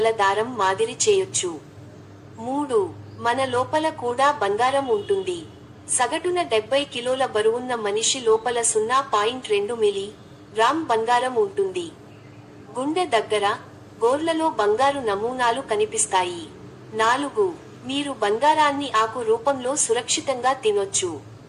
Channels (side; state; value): both; identical; correlation 1.00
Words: దారం మాదిరి చేయొచ్చు. 3. మన లోపల కూడా బంగారం ఉంటుంది. సగటున 70 కిలోల బరువున్న మనిషి లోపల 0.2 మిలీ గ్రామ్ బంగారం ఉంటుంది. గుండె దగ్గర, గోర్లలో బంగారు నమూనాలు కనిపిస్తాయి. 4. మీరు బంగారాన్ని ఆకు రూపంలో సురక్షితంగా తినొచ్చు.